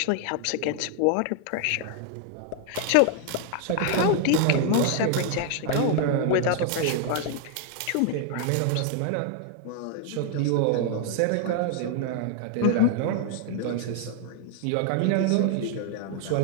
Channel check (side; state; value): both; different; correlation 0.00